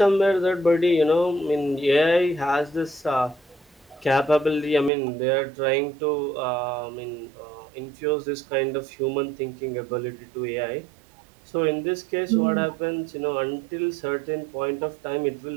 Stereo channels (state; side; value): drops out; left; at 4.9 s